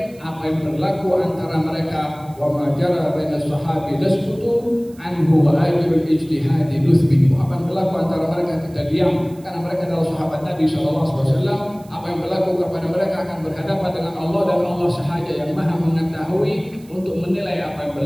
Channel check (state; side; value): noise; right; hiss, 27 dB below the sound